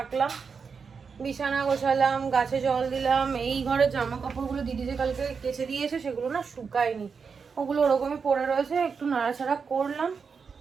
বিছানা গোছালাম, গাছে জল দিলাম। এই ঘরের জামা কাপড়গুলো দিদি যে কালকে কেচে দিয়েছে সেগুলো না শুকায়নি, ওগুলো ওরকমই পড়ে রয়েছে। একটু নাড়াচাড়া করলাম।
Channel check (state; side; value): quieter; left; 5.6 dB